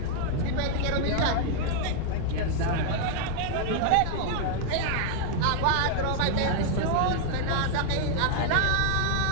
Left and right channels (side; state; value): both; different; correlation -0.01